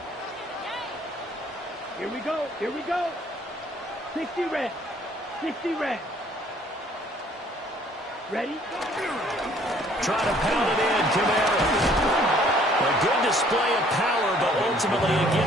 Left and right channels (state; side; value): normal; both; correlation 0.59